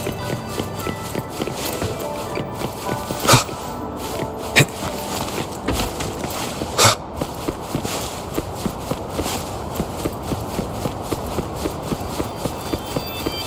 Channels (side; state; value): both; identical; correlation 1.00